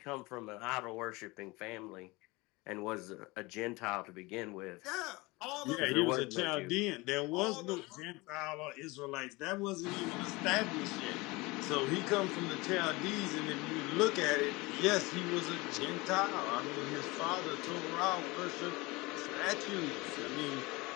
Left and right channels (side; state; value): right; quieter; 23.5 dB